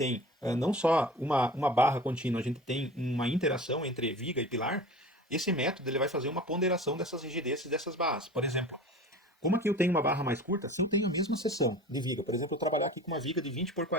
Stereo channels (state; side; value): normal; both; correlation 0.38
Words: não só uma barra contínua, a gente tem uma interação entre viga e pilar, esse método ele vai fazer uma ponderação dessas rigidezes dessas barras. Por exemplo, como aqui eu tenho uma barra mais curta, se eu tenho a mesma seção de viga, por exemplo, eu trabalhar aqui com uma viga de 20 por